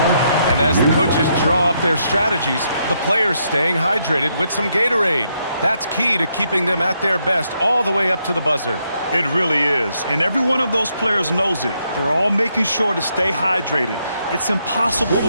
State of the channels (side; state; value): both; inverted; correlation -0.77